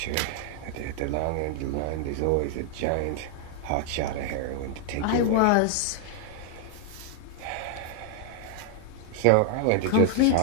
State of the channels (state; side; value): different; both; correlation 0.00